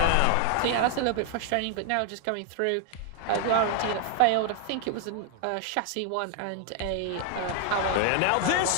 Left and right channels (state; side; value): different; both; correlation 0.00